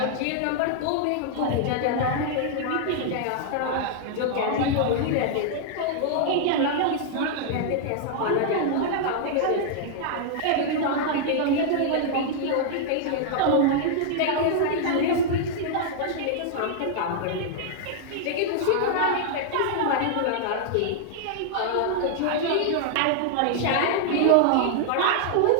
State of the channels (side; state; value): both; different; correlation -0.01